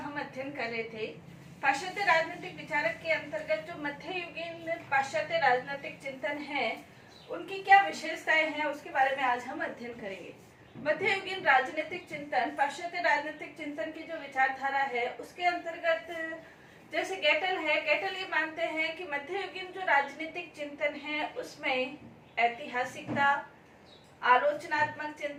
अध्ययन कर रहे थे। पाश्चात्य राजनीतिक विचारक के अंतर्गत जो मध्ययुगीन पाश्चात्य राजनीतिक चिंतन है, उनकी क्या विशेषताएं हैं, उसके बारे में आज हम अध्ययन करेंगे। मध्ययुगीन राजनीतिक चिंतन, पाश्चात्य राजनीतिक चिंतन की जो विचारधारा है, उसके अंतर्गत जैसे गेटल है, गेटल ये मानते हैं कि मध्ययुगीन जो राजनीतिक चिंतन है उसमें ऐतिहासिकता, आलोचनात्मक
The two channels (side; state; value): both; identical; correlation 1.00